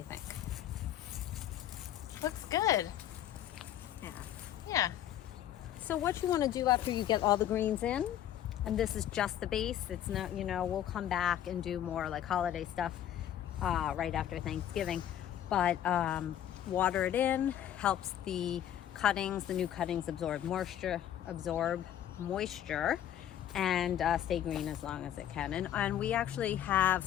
think? Looks good. Yeah. Yeah. So what you want to do after you get all the greens in, and this is just the base, it's not, we'll come back and do more like holiday stuff right after Thanksgiving, but water it in, helps the cuttings, the new cuttings absorb moisture, and stay green as long as it can. And we actually have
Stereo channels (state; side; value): quieter; right; 11.1 dB